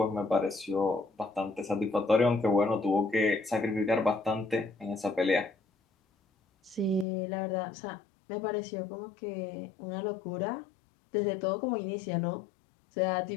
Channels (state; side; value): drops out; right; at 7.1 s